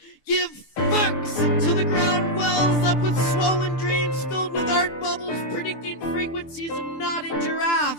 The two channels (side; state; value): right; late; 6.7 ms